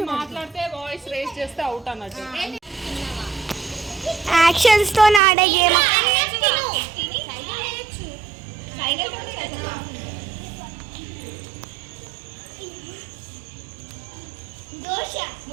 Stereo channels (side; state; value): left; drops out; at 5.2 s